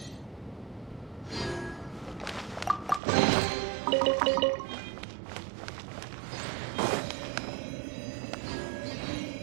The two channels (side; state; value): left; drops out; at 3.0 s